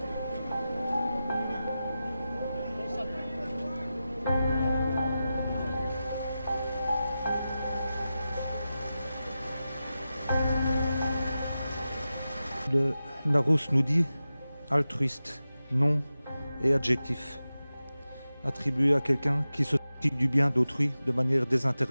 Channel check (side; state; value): both; inverted; correlation -0.93